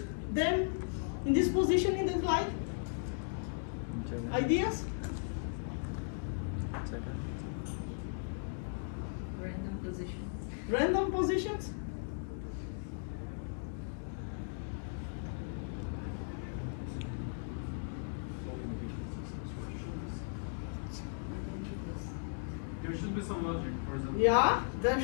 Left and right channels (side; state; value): right; silent; digital silence